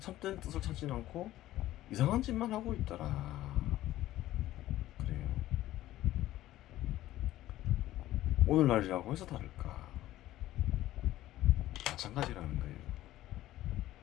참된 뜻을 찾지 않고 이상한 짓만 하고 있더라. 그래요. 오늘날이라고 해서 다를까? 마찬가지라는 거예요.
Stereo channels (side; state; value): right; quieter; 14.8 dB